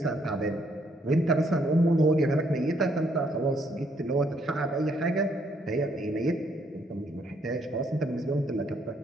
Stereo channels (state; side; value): normal; both; correlation 0.70